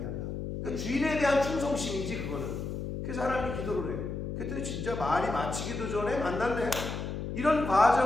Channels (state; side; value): noise; left; hum, 5 dB below the sound